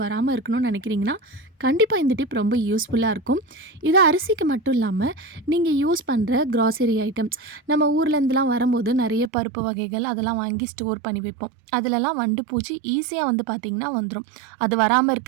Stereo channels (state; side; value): drops out; left; at 9.3 s